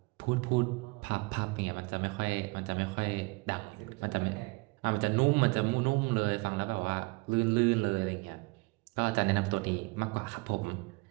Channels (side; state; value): left; quieter; 26.7 dB